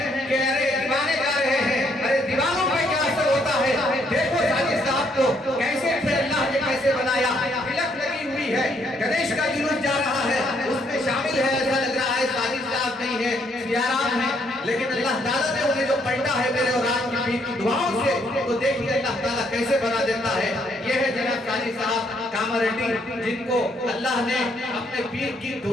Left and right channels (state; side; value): normal; both; correlation 0.70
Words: کہ ارے دیوانے جا رہے ہیں، ارے دیوانوں پہ کیا اثر ہوتا ہے، دیکھو ساجد صاحب کو کیسے تھے، اللہ نے کیسے بنایا، تلک لگی ہوئی ہے، گنیش کا جلوس جا رہا ہے، اس میں شامل ہے، ایسا لگ رہا ہے ساجد صاحب نہیں ہے، سیارام ہے، لیکن اللہ تعالیٰ نے انہیں جو پلٹا ہے میرے اور آپ کی دعاؤں سے تو دیکھیے اللہ تعالیٰ کیسے بنا دیتا ہے۔ یہ ہے جناب ساجد صاحب کامریڈی، جن کو اللہ نے اپنے پیر کی